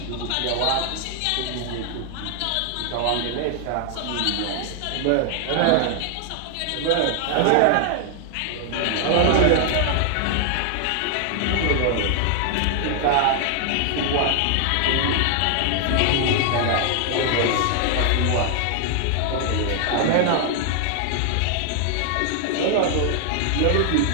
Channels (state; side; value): different; both; correlation 0.00